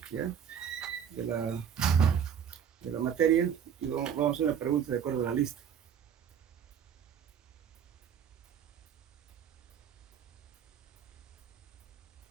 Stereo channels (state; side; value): quieter; left; 8.1 dB